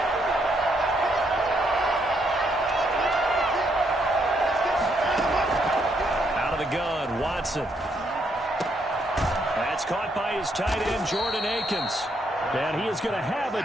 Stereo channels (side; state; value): both; normal; correlation 0.74